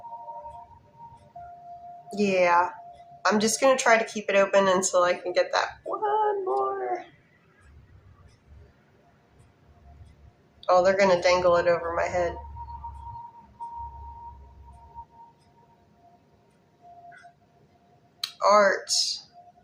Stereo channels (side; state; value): both; identical; correlation 1.00